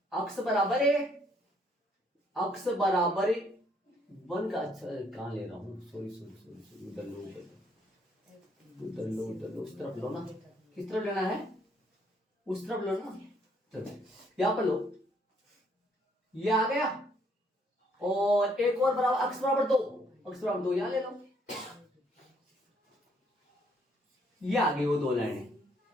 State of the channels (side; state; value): both; normal; correlation 0.67